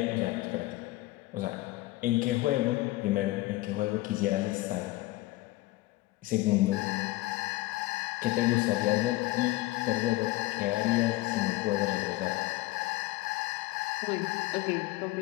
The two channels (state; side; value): quieter; right; 18.5 dB